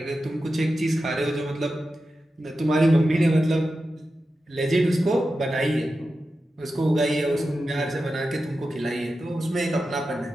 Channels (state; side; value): normal; both; correlation 0.91